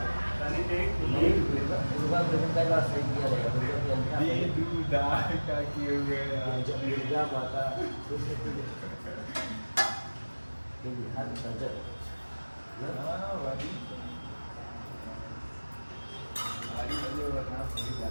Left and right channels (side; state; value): both; inverted; correlation -1.00